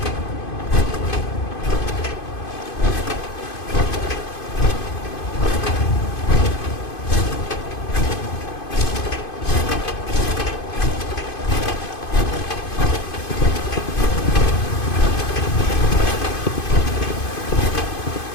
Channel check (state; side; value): late; right; 2.5 ms